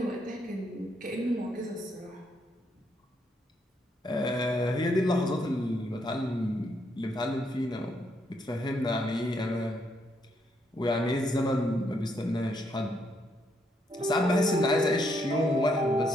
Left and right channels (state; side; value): normal; both; correlation 0.75